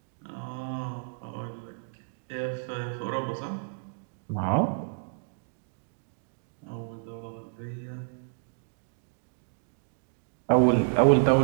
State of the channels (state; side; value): silent; left; digital silence